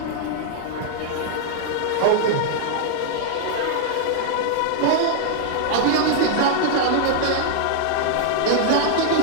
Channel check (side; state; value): both; different; correlation -0.01